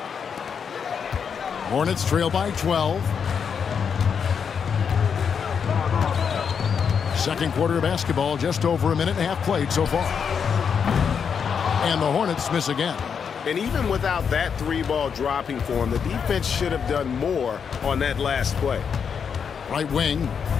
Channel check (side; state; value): right; quieter; 6.8 dB